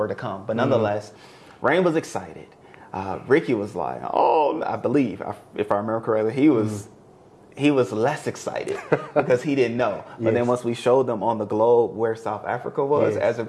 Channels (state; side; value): identical; both; correlation 1.00